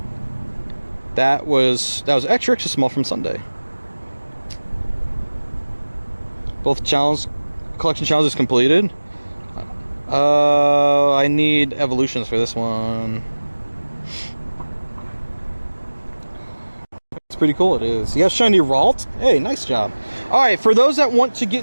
That was extra small from Sunday. Both collection challenges completed. I need evolutions for this one. It's pretty cool, it is. You have shiny Ralt? Hey, nice job. Alright, for those that want to get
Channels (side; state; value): both; inverted; correlation -1.00